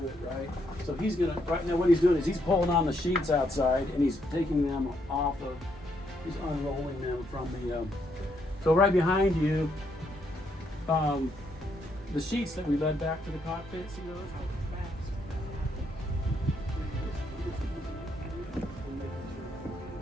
it, right? So he's going to, right now what he's doing is he's pulling on the sheets outside and he's taking them off of, he's unrolling them from the, so right behind you, the sheets that we led back to the cockpit, see those?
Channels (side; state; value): both; normal; correlation 0.75